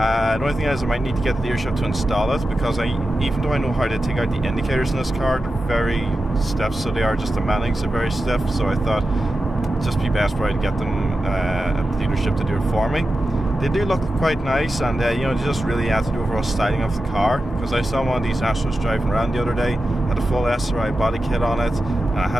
only thing is I might need to get the dealership to install it because even though I know how to take out the indicators in this car, they're very stiff, so they are just the mountings are very stiff, so I thought it'd just be best for I to get them at the dealership to do it for me. They do look quite nice, and they just really add to the overall styling of the car, because I saw one of these Astros driving around the other day, had a full SRI body kit on it, and I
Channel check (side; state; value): both; normal; correlation 0.91